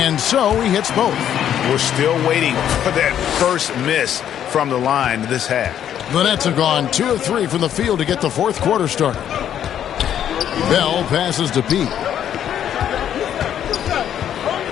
And so he hits both. We're still waiting for that first miss from the line this half. The Nets have gone 2 of 3 from the field to get the fourth quarter started. Bell passes to Pete.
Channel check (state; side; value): quieter; right; 10.0 dB